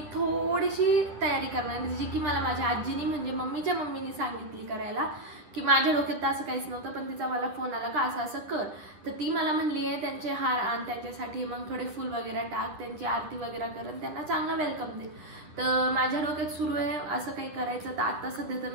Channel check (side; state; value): left; late; 10 ms